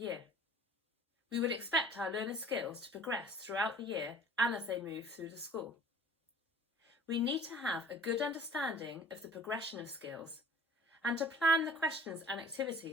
We would expect our learner skills to progress throughout the year and as they move through the school. We need to have a good understanding of the progression of skills and to plan the questions and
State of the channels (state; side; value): normal; both; correlation 0.48